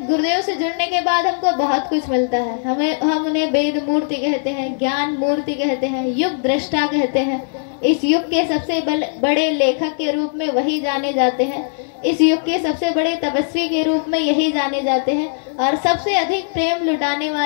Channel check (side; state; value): right; silent; digital silence